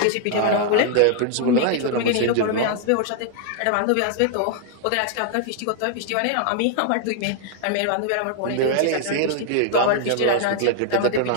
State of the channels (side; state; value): both; different; correlation -0.01